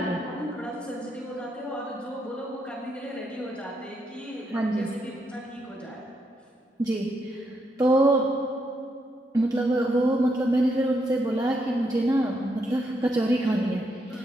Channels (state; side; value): normal; both; correlation 0.78